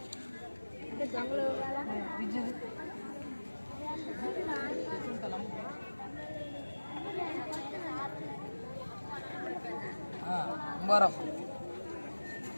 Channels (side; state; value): both; inverted; correlation -1.00